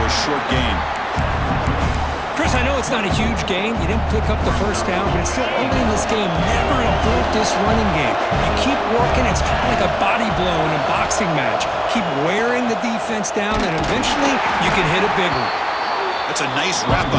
a short gain. Chris, I know it's not a huge game. You didn't pick up the first down, but it's still early in this game. Never abort this running game. You keep working. It's kind of like a body blow in a boxing match. Keep wearing the defense down, and eventually you can hit a big one. That's a nice wrap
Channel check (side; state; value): both; identical; correlation 1.00